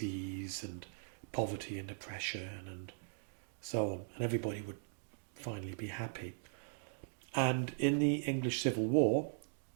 and poverty and oppression and so on, and everybody would finally be happy. And in the English Civil War,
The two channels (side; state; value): left; silent; digital silence